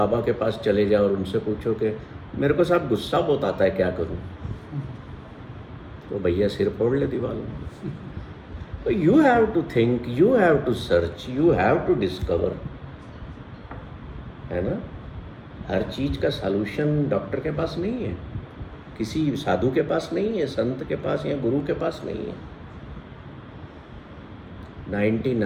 के पास चले जाओ और उनसे पूछो कि मेरे को साहब गुस्सा बहुत आता है, क्या करूं? तो भैया सिर फोड़ ले दीवार में। तो you have to think, you have to search, you have to discover, है ना। हर चीज़ का सॉल्यूशन डॉक्टर के पास नहीं है, किसी साधु के पास नहीं है, संत के पास या गुरु के पास नहीं है।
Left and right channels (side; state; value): both; identical; correlation 1.00